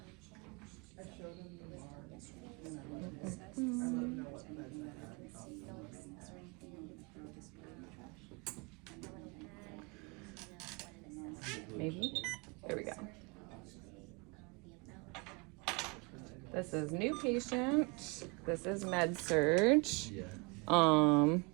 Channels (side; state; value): left; quieter; 29.1 dB